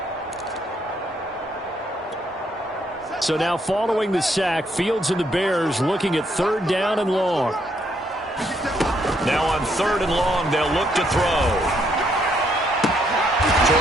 So now following the sack, Fields and the Bears looking at third down and long. Now on third and long, they'll look to throw.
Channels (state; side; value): normal; both; correlation 0.72